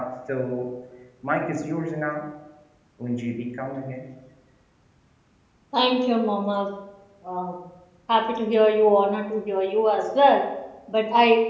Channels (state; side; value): identical; both; correlation 1.00